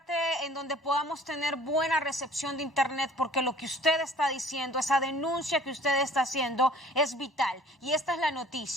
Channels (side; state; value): both; normal; correlation 0.51